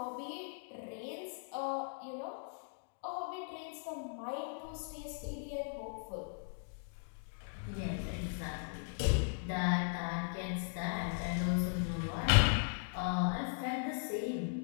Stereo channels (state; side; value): silent; right; digital silence